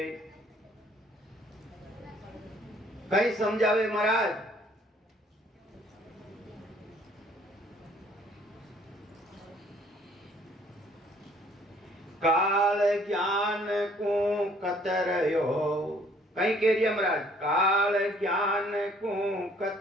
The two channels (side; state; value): both; normal; correlation 0.60